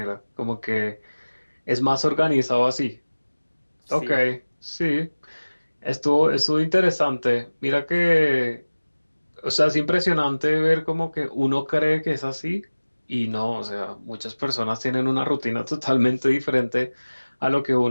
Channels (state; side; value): inverted; both; correlation -1.00